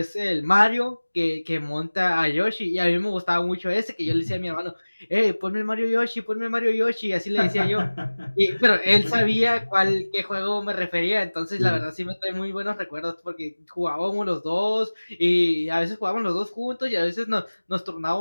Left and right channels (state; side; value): inverted; both; correlation -1.00